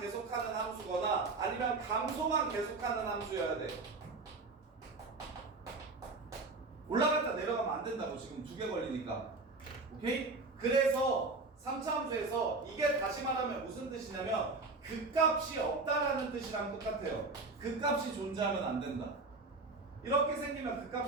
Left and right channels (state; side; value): quieter; left; 3.7 dB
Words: 함수거나 아니면 감소만 계속하는 함수여야 돼. 올라갔다 내려가면 안 된다고. 지금 2개 걸리니까. 오케이? 그래서 3차 함수에서 이게 다시 말하면 무슨 뜻이냐면 극값이 없다라는 뜻이랑 똑같아요. 극값이 존재하면 안 된다. 이렇게 생기면